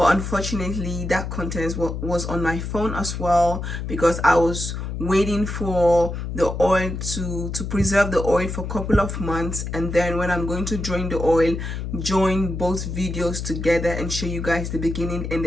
unfortunately that content was on my phone as well, because I was waiting for the oil to preserve the oil for a couple of months, and then when I'm going to drain the oil, join both videos together and show you guys the beginning and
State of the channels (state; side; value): noise; left; hum, 5 dB below the sound